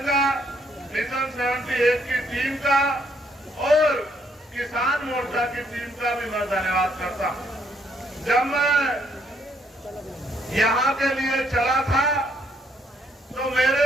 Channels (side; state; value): both; normal; correlation 0.70